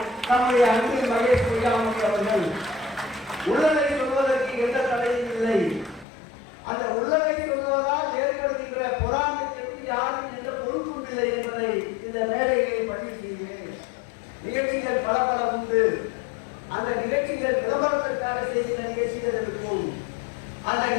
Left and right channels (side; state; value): right; drops out; at 6.1 s